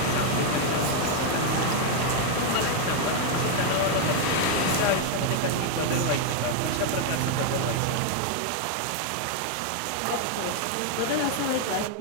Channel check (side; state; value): both; different; correlation 0.01